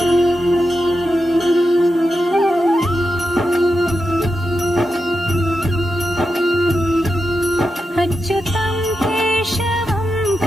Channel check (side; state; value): both; normal; correlation 0.88